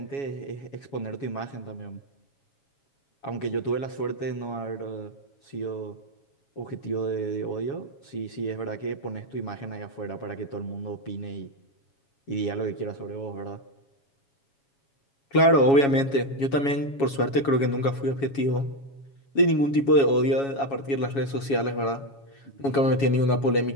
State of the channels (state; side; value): late; right; 7.2 ms